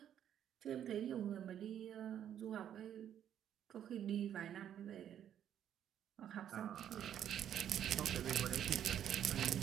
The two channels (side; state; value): left; quieter; 10.0 dB